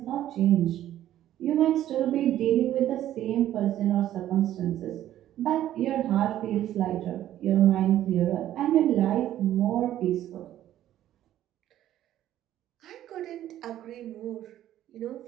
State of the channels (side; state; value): left; quieter; 12.5 dB